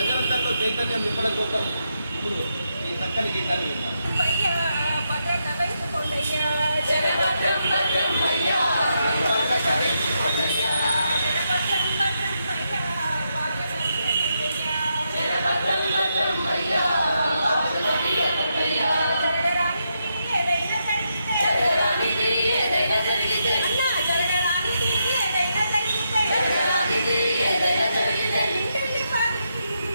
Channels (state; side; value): inverted; both; correlation -0.82